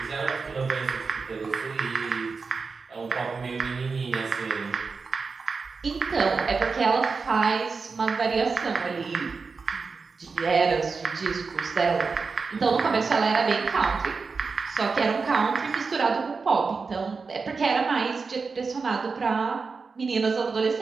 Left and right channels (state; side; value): quieter; left; 4.7 dB